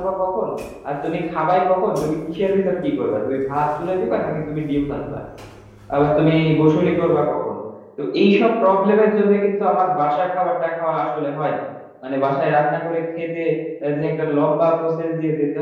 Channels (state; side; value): identical; both; correlation 1.00